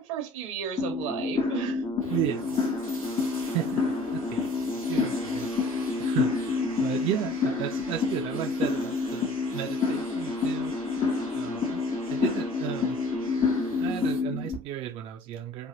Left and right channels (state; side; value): normal; both; correlation 0.50